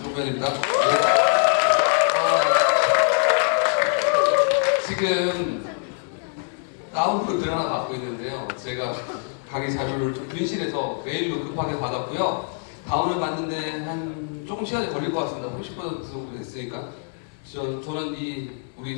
노무현입니다. 지금 다운으로 글 하나 받고 있는데요. 제가 강의 자료를 좀 분실해서 메일로 급하게 받았고요. 다운을 받는데 한 조금 시간이 걸릴 것 같습니다. 30% 정도 됐으니까. 저는 우리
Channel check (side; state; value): right; silent; 63 dB below the other